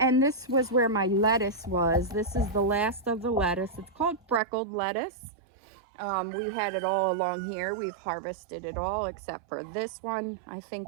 this was where my lettuce was. This is the last of the lettuce. It's called freckled lettuce. We had it all along here. We've harvested it all except for this one. I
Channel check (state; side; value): drops out; left; at 4.4 s